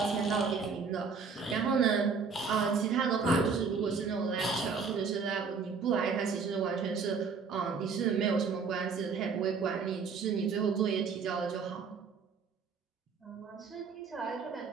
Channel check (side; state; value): left; quieter; 5.3 dB